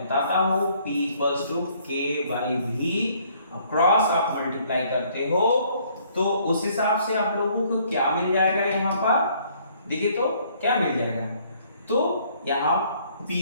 हूं। P equals to K/V, cross आप मल्टीप्लाई करते हो तो उस हिसाब से आप लोगों को क्या मिल जाएगा, यहां पर देखिए तो क्या मिल जाएगा, तो यहां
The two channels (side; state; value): both; inverted; correlation -0.62